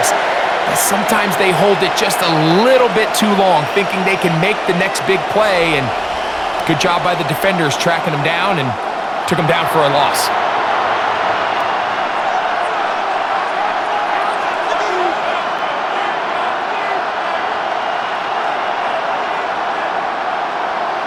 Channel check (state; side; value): identical; both; correlation 1.00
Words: that sometimes they hold it just a little bit too long, thinking they can make the next big play, and good job by the defenders tracking him down and took him down for a loss.